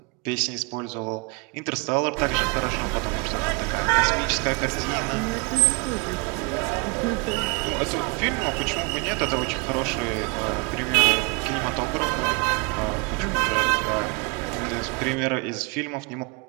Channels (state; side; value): quieter; left; 30.9 dB